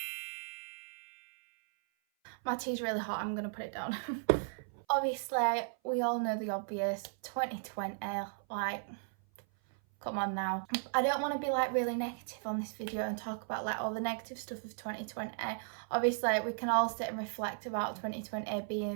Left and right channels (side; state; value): left; silent; 54 dB below the other